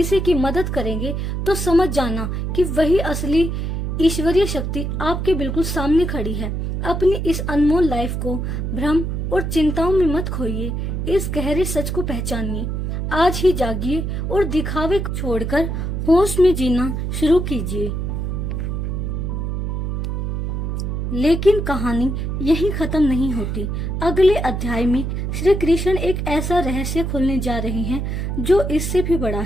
की मदद करेंगे, तो समझ जाना कि वही असली ईश्वरीय शक्ति आपके बिल्कुल सामने खड़ी है। अपनी इस अनमोल लाइफ को भ्रम और चिंताओं में मत खोइए, इस गहरे सच को पहचानिए। आज ही जागिए और दिखावे को छोड़कर होश में जीना शुरू कीजिए। लेकिन कहानी यहीं खत्म नहीं होती। अगले अध्याय में श्री कृष्ण एक ऐसा रहस्य खोलने जा रहे हैं जो इससे भी बड़ा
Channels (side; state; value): right; noise; hum, 2 dB below the sound